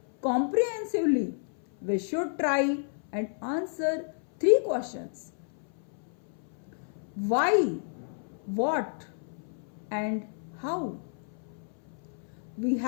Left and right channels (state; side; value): silent; right; 56 dB below the other